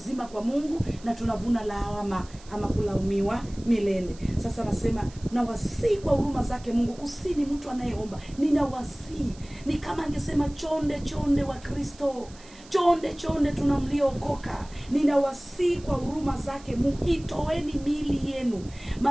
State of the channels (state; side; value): noise; right; hiss, 22 dB below the sound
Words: kwa Mungu, na tunavuna lawama ama kulaumiwa milele. Sasa nasema na wasihi kwa huruma zake Mungu. Kusini mtu anayeomba, ninawasihi. Ni kama angesema chonde wa Kristo, chonde tunamliokoka. Ninawasihi kwa huruma zake Mungu, itoeni miili yenu.